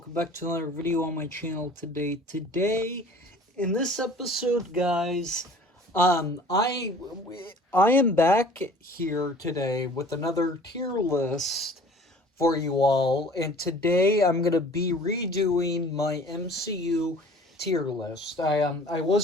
back to another video on my channel today. In this episode, guys, I am back here today with another tier list for you all, and today I'm gonna be redoing my MCU tier list. I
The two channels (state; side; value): normal; both; correlation 0.48